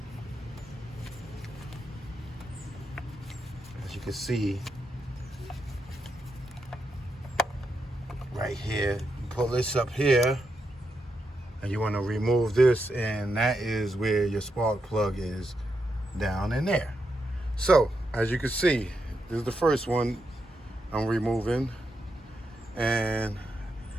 As you can see, right here, you pull this up here and you want to remove this, and that is where your spark plug is, down in there. So as you can see, this is the first one I'm removing, and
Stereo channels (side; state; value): both; normal; correlation 0.84